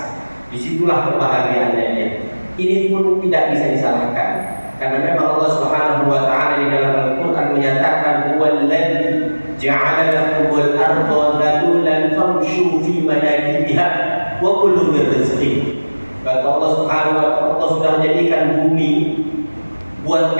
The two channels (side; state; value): both; inverted; correlation -1.00